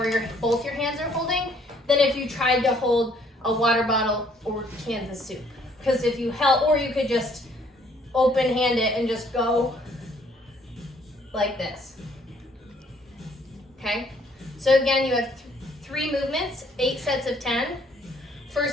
both your hands are holding, than if you tried to hold a water bottle or cans of soup. Because if you held, or you could just open hand it and just go like this. Okay? So again, you have 3 movements, 8 sets of 10.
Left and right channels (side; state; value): both; normal; correlation 0.63